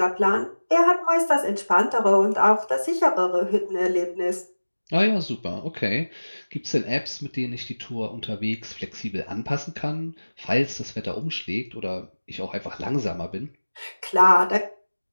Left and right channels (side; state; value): both; inverted; correlation -1.00